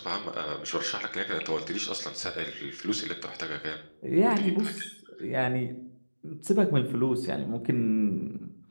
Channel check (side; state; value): both; inverted; correlation -1.00